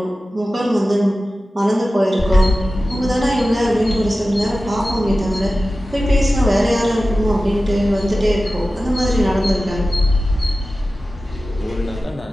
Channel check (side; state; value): both; normal; correlation 0.95